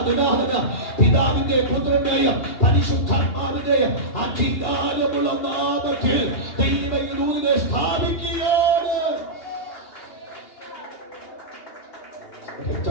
ദിനാഹന പിതാവിന്റെ പുത്രനായ പരിശുദ്ധാത്മാവിന്റെ അധികാരമുള്ള നാമത്തിൽ ദൈവത്തിനെ സ്ഥാപിക്കുകയാണ്.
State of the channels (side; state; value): right; late; 2.8 ms